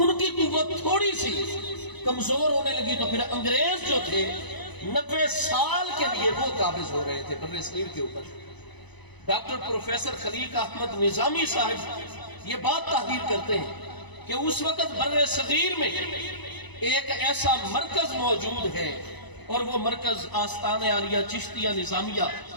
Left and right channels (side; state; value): right; late; 1.0 ms